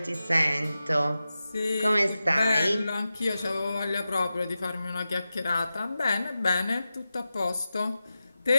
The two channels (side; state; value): both; inverted; correlation -0.93